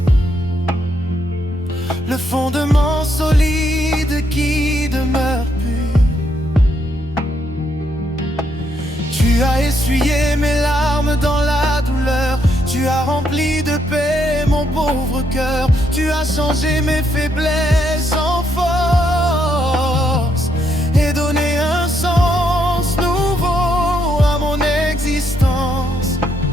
le fondement solide qui demeure pur. Tu as essuyé mes larmes dans la douleur. Tu as rempli de paix mon pauvre cœur. Tu as changé mes faiblesses en force et donné un sens nouveau à mon existence.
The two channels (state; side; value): normal; both; correlation 0.76